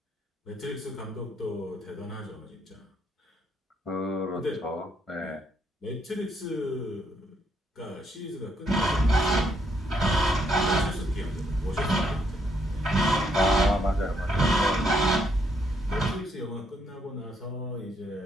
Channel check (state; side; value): normal; both; correlation 0.73